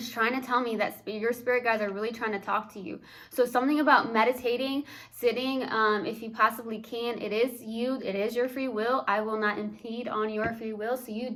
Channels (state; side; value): identical; both; correlation 1.00